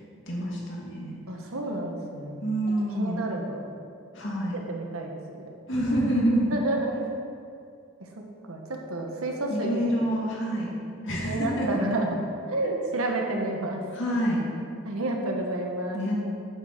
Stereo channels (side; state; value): both; normal; correlation 0.47